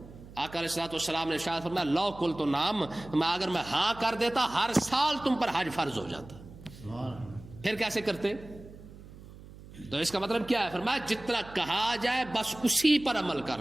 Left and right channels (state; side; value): noise; right; hum, 18 dB below the sound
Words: آقا علیہ السلام نے شاید فرمایا لو کل تو نام، اگر میں ہاں کر دیتا ہر سال تم پر حج فرض ہو جاتا. پھر کیسے کرتے؟ تو اس کا مطلب کیا ہے؟ فرمایا جتنا کہا جائے بس اسی پر عمل کر